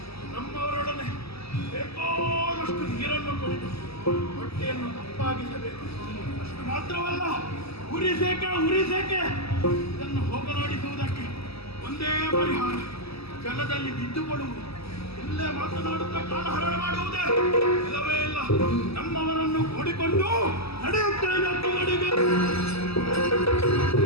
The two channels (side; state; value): right; late; 0.78 ms